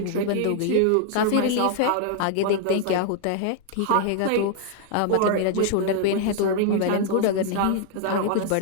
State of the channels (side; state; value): both; different; correlation 0.00